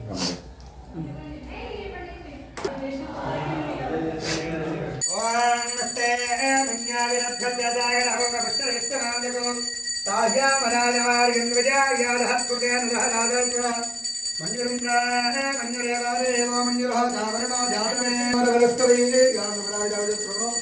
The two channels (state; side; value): identical; both; correlation 1.00